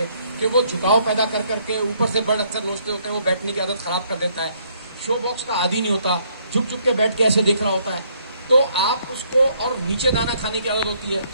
कि वो झुकाव पैदा कर करके, ऊपर से बर्ड अक्सर लोचते होते हैं, वो बैठने की आदत खराब कर देता है, शो बॉक्स का आदी नहीं होता, झुक झुक के बैठ के ऐसे देख रहा होता है। तो आप उसको, और नीचे दाना खाने की आदत होती है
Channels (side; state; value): both; inverted; correlation -0.68